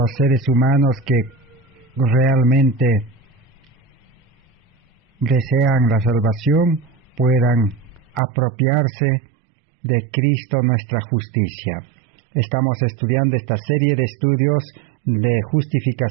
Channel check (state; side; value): drops out; left; at 8.2 s